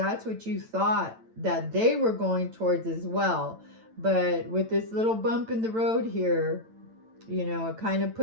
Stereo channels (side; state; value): left; late; 9.0 ms